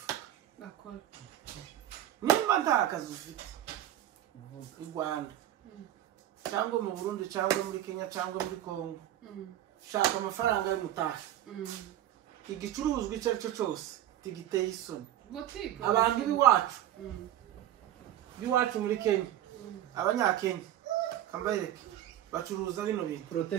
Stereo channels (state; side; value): quieter; left; 12.3 dB